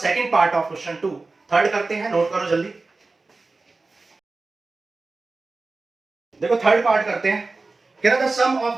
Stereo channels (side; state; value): left; quieter; 3.6 dB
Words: part of question 2, third करते हैं, नोट करो जल्दी। देखो थर्ड पार्ट करते हैं, कह रहा था sum